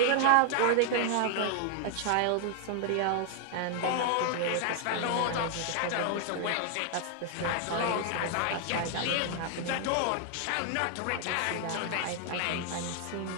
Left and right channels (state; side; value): different; both; correlation 0.00